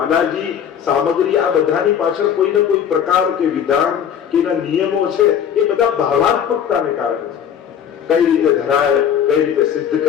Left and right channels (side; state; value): right; quieter; 8.6 dB